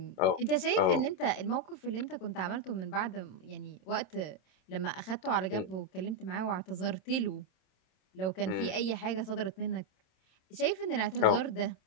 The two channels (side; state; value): right; late; 27 ms